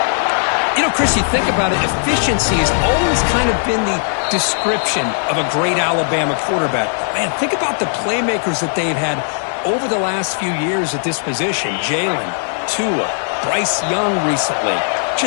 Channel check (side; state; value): right; silent; digital silence